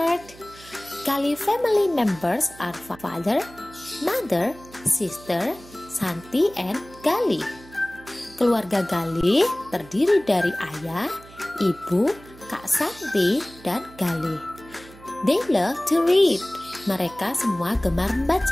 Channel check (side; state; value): right; noise; hum, 21 dB below the sound